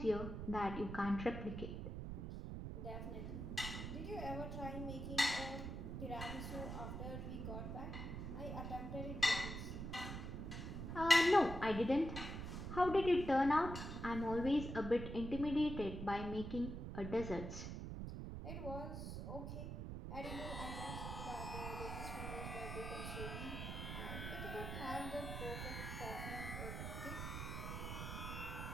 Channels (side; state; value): right; noise; rumble, 5 dB below the sound